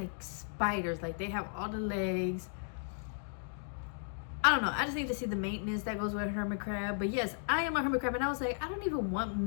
spiders. Like, they have all the legs. I don't know, I just need to see the maintenance that goes with a hermit crab. But yes, I am a hermit crab, and I was like, I don't even want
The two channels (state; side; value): silent; right; digital silence